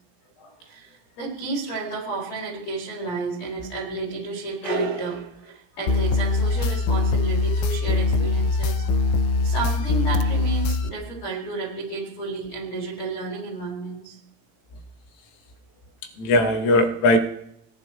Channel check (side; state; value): right; late; 18 ms